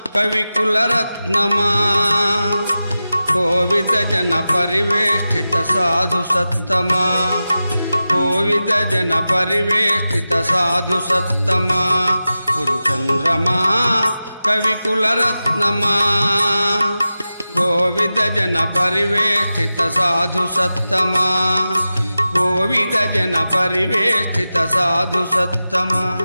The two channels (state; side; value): inverted; both; correlation -0.94